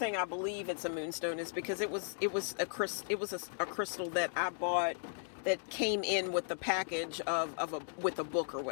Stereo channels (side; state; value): right; silent; digital silence